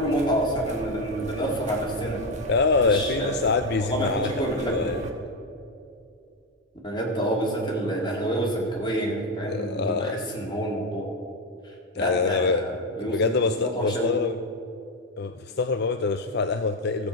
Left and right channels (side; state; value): both; normal; correlation 0.09